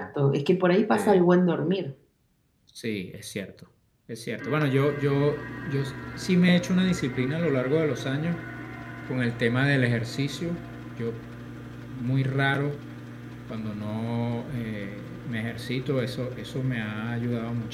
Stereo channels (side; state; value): both; identical; correlation 1.00